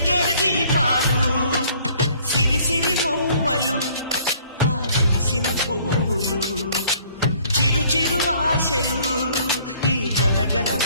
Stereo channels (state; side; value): inverted; both; correlation -0.58